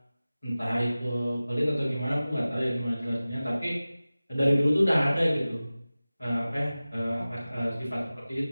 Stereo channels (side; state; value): both; inverted; correlation -0.97